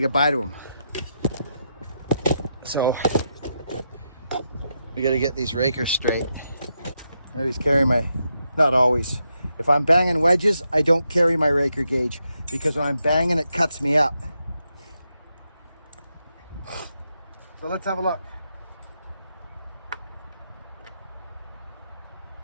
to him. So we got to get these rakers straight. I always carry my, not always. If I'm banging wedges, I don't carry my raker gauge, because when I'm banging, it cuts me up. So let's have a look.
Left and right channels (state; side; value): inverted; both; correlation -0.83